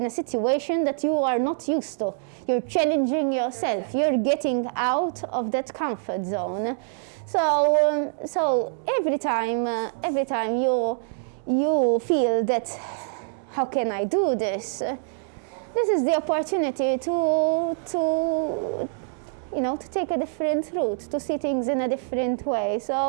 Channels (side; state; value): left; silent; digital silence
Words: a situation that you are not used to. You're challenging yourself. Okay. You're getting out of that comfort zone. So every time you feel that, how can I do this? This is the opportunity to take a different route, to see things in a different way.